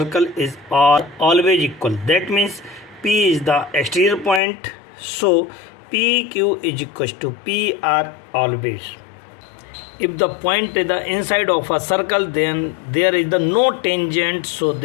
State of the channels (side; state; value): right; drops out; at 4.4 s